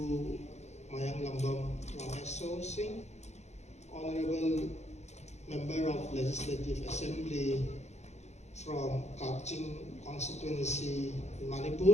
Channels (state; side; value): late; right; 0.32 ms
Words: Mayang Lambam Ramesh Singh, Honorable Member of Legislative Assembly from Kaching constituency in